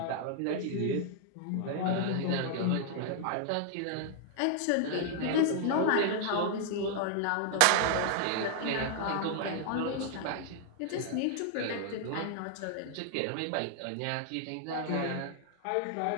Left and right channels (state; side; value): different; both; correlation 0.00